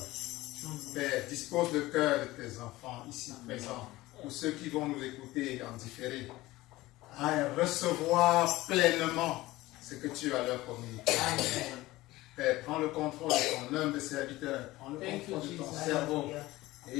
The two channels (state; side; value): quieter; right; 18.3 dB